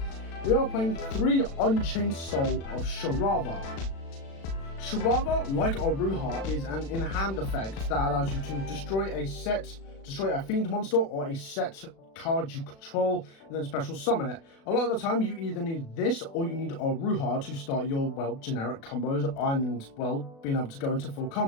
We are playing 3 Unchained Soul of Sharava. Sharava, like Aruha, is an in-hand effect that allows you to destroy a Fiend monster or a set card you control, and then special summon it. A lot of the time you either need this or you need Aruha to start your, well, generic combos and, well, being able to go into full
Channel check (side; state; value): right; late; 36 ms